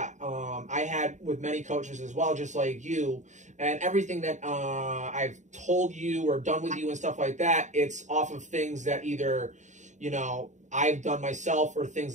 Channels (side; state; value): left; late; 0.35 ms